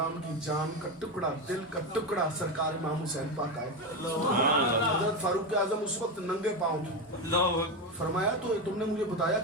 की जान का टुकड़ा, दिल का टुकड़ा सरकार इमाम हुसैन पाक आए। हजरत फारूक आजम उस वक्त नंगे पांव थे। फरमाया तो तुमने मुझे बताया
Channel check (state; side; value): normal; both; correlation 0.14